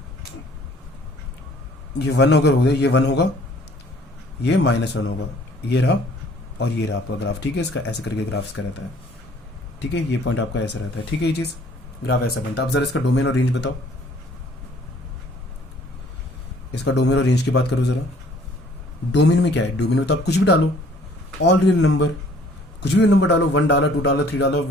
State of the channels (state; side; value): normal; both; correlation 0.57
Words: 1 होगा, ये 1 होगा, ये -1 होगा, ये रहा और ये रहा आपका ग्राफ, ठीक है। इसका ऐसे करके ग्राफ इसका रहता है, ठीक है। ये पॉइंट आपका ऐसा रहता है, ठीक है। ये चीज़ ग्राफ ऐसा बनता है। अब जरा इसका डोमेन और रेंज बताओ, इसका डोमेन और रेंज की बात करो जरा। डोमेन में क्या है, डोमेन में तो आप कुछ भी डालो, ऑल रियल नंबर, कुछ भी नंबर डालो, 1 डाला, 2 डाला, 3 डाला,